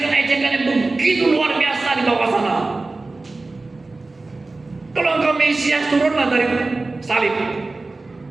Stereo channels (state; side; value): quieter; left; 3.4 dB